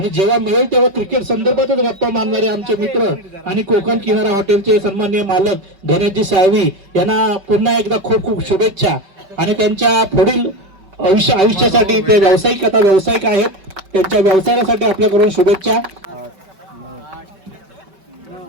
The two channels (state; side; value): late; left; 5.2 ms